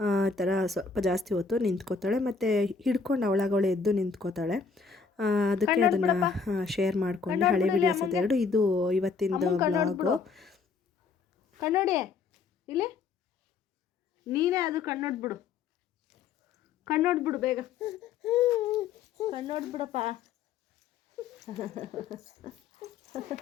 ಈ ಥರ ಸ್ವಲ್ಪ ಜಾಸ್ತಿ ಹೊತ್ತು ನಿಂತ್ಕೋತಾಳೆ. ಮತ್ತು ಹಿಡ್ಕೊಂಡು ಅವಳಾಗವಳೆ ಎದ್ದು ನಿಂತ್ಕೋತಾಳೆ. ಅದಕ್ಕೆ ಅದನ್ನು ಶೇರ್ ಮಾಡಿಕೊಂಡೆ, ಹಳೆ ವೀಡಿಯೋಸ್ ಅದೆರಡು. ಇದು ಇವತ್ತಿಂದು ವ್ಲಾಗು. ಕಣ್ಣೋಡಿ ಇಲ್ಲಿ, ನೀನೇ ಅದು ಕಣ್ಣೋಡ್ಬಿಡು, ಕಣ್ಣೋಡ್ಬಿಡು ಬೇಗ, ಕಣ್ಣೋಡ್ಬಿಡಪ್ಪ.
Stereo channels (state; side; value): quieter; right; 5.1 dB